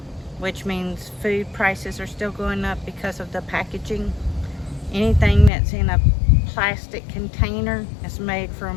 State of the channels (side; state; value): right; drops out; at 5.5 s